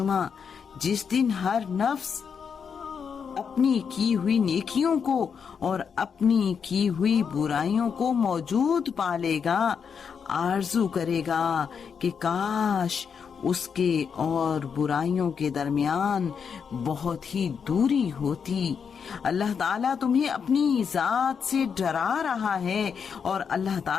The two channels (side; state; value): right; quieter; 6.6 dB